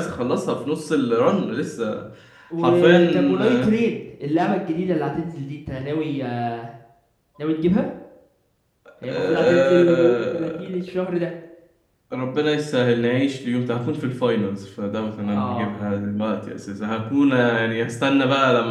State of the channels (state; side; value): identical; both; correlation 1.00